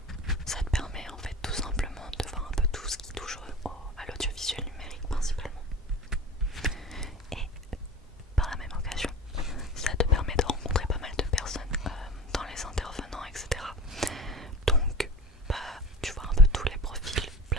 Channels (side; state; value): both; normal; correlation 0.38